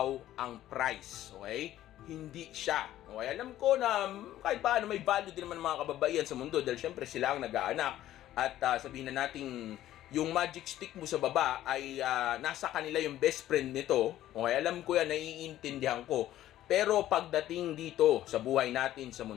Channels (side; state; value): right; quieter; 13.3 dB